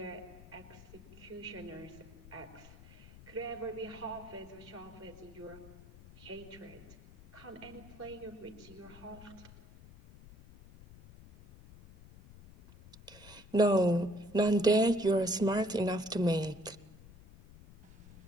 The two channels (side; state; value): left; noise; rumble, 19 dB below the sound